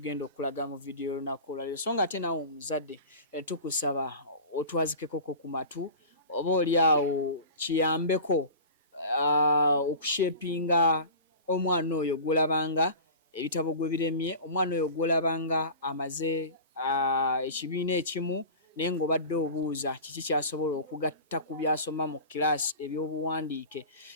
okulaga mu video olunaku olwaleero. So nga ate naawe omuzadde tukusaba otwazikeko ku matu oba oli awo kiyambeko okushepinga omwana oyo gw'olabanga ebitabo gwe biremye, omwana oyo gw'olabanga amaze ekibiina ekimu naye ng'obadde obuuza kiki kyasobola okugatta ku byasoma mu kiraasi ebyobuwandiike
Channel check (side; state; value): both; inverted; correlation -0.35